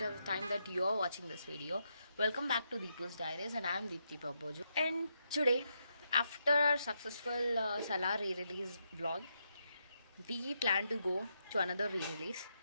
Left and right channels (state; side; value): inverted; both; correlation -0.81